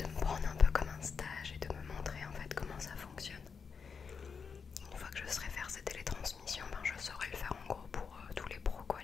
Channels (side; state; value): right; quieter; 5.8 dB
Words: me prendre un peu comme un stage et de me montrer en fait comment ça fonctionne. Une fois que je saurai faire ces télétransmissions, je saurai le faire en gros pour tous les pros, quoi,